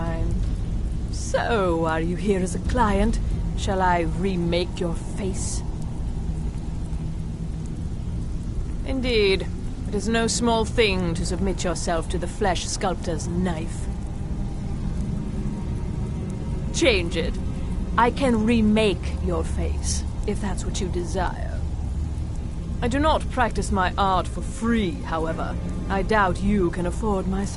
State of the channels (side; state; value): both; identical; correlation 1.00